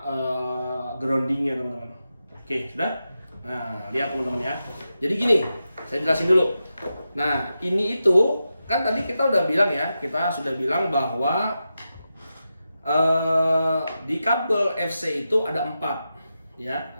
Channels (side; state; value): both; inverted; correlation -0.90